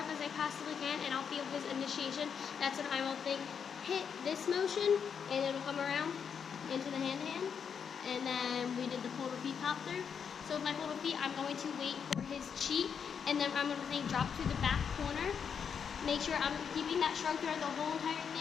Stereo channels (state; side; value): quieter; right; 7.0 dB